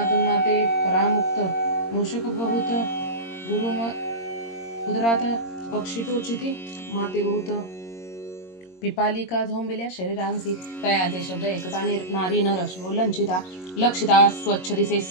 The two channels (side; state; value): right; late; 22 ms